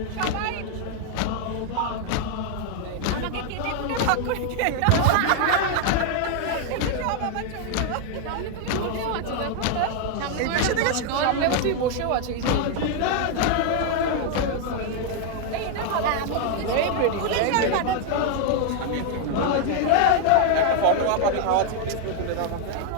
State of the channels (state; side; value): different; both; correlation 0.00